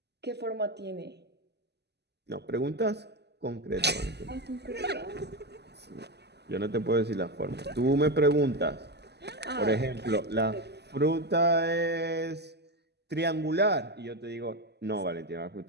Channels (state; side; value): late; left; 0.49 ms